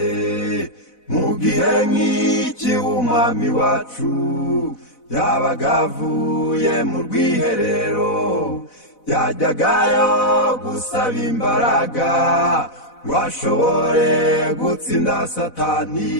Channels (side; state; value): right; late; 4.0 ms